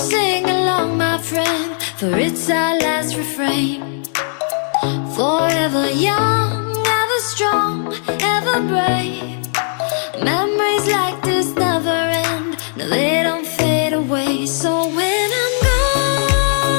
along, my friend? For it's our last refrain. Forever young, ever strong, ever brave. Memories like this never end. No, they don't fade away. So when I'm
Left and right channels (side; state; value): right; silent; digital silence